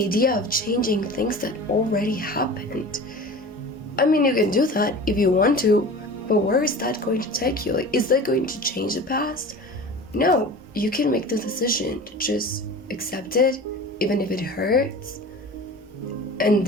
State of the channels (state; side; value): normal; both; correlation 0.36